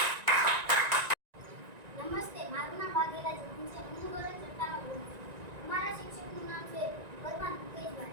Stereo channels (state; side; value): late; left; 1.9 ms